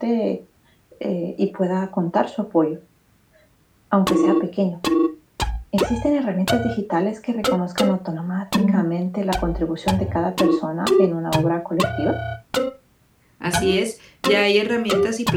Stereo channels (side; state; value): both; identical; correlation 1.00